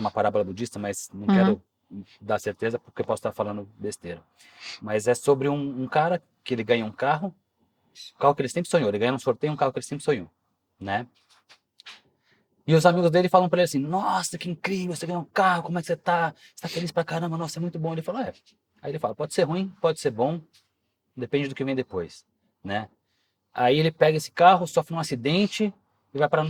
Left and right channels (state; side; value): identical; both; correlation 1.00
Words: parábola budista, mas não uhum, quero dar certeza porque eu posso estar falando besteira. Mas é sobre um cara que ele ganha um carro que ele sempre sonhou. Ele ganha um sorteio um carro que ele sempre sonhou, né? E os amigos dele falam pra ele assim: Nossa, que incrível, você ganhou um carro, como é que você tá? Você tá feliz pra caramba, nossa, é muito bom. Ele fala: É. Aí ele fala: Pode ser ruim, pode ser bom, depende do que vem depois, né? Aí ele pega esse carro, sofre um acidente e vai parar no